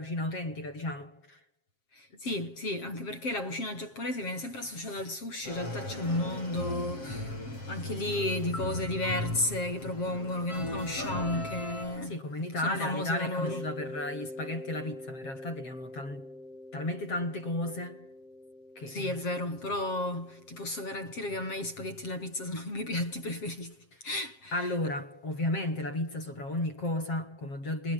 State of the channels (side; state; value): right; late; 7.5 ms